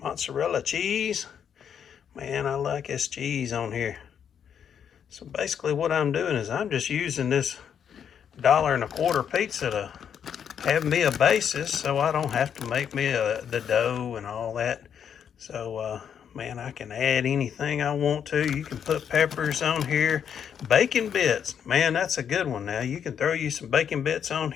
cheese. Man, I like this cheese on here. So basically what I'm doing is I'm just using this $1.25 pizza to have me a basis so I don't have to make me the dough and all that. So man, I can add anything I want to. You can put peppers on here. Bacon bits, man, that's a good one. Now you can throw you some bacon bits on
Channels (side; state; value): right; quieter; 8.2 dB